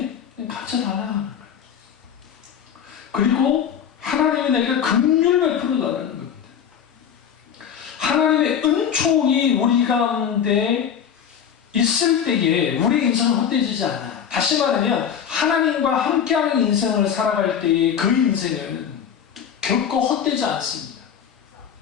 가르쳐달라는 거예요. 그리고 하나님이 내게 긍휼을 베풀어달라는 겁니다. 하나님의 은총이 우리 가운데 있을 때에 우리 인생은 헛되지지 않아. 다시 말하면 하나님과 함께하는 인생을 살아갈 때의 그 인생은 결코 헛되지 않습니다.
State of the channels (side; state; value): right; quieter; 8.2 dB